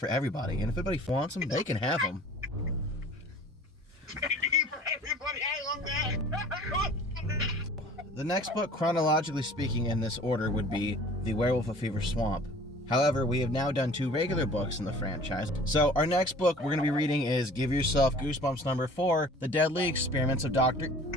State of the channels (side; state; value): both; normal; correlation 0.47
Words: everybody. And if anybody wants them, they can have them. E for everybody, I love that. The next book, chronologically speaking, in this order would be The Werewolf of Fever Swamp. However, we have now done 2 regular books in the franchise. So our next book we're going to be reading is Give Yourself Goosebumps number 4, The Deadly Experiments of Dr.